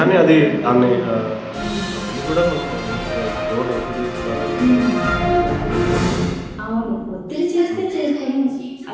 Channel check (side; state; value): both; identical; correlation 1.00